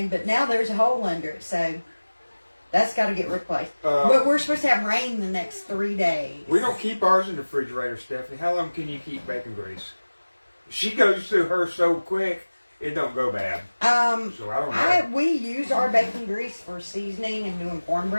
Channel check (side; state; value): both; inverted; correlation -1.00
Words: but now there's a hole under it, so that's got to get replaced. But we're supposed to have rain the next 3 days. We don't keep ours in the refrigerator, Stephanie. How long can you keep bacon grease? She goes through hers so quick, it don't go bad. So I don't know. We use our bacon grease for seasoning and doing